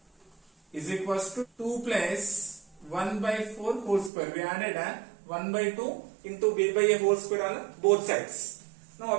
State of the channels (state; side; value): drops out; left; at 4.1 s